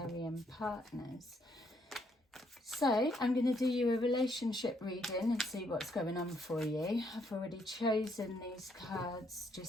partners. So I'm going to do you a relationship reading and see what's going on for you. I've already chosen these cards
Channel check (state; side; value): normal; both; correlation 0.72